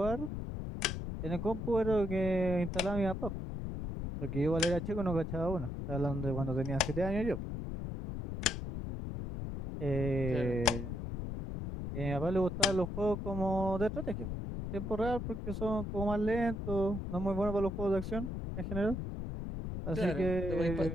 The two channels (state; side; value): noise; left; rumble, 5 dB below the sound